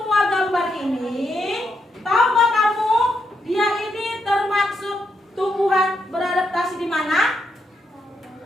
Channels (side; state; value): both; normal; correlation 0.81